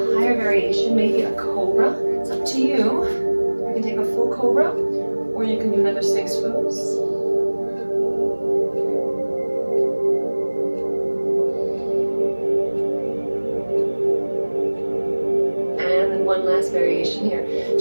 higher variation, maybe a cobra. It's up to you. You can take a full cobra, or you can do another Sphinx pose. And then one last variation here.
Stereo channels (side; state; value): both; inverted; correlation -1.00